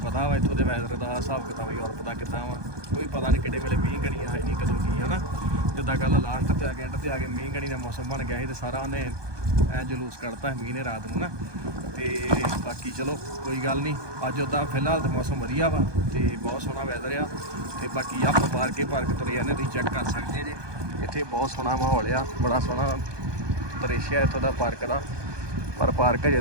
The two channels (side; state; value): left; late; 1.2 ms